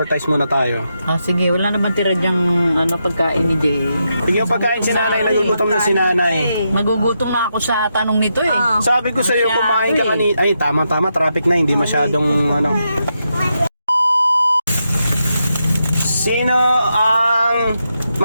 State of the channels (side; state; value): both; inverted; correlation -0.84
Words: muna tayo. Sige, wala naman tira dyang pagkain ni Jay. Yung pagkain si nanay, nagugutom na si nanay. Magugutom na ako sa tanong nito eh. Sabi ko sa iyo, kumain ka kanina. Ay, tama, traffic na, hindi masyadong Sino ang